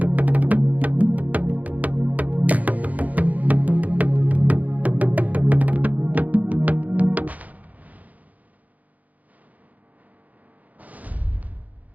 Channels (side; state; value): left; late; 0.077 ms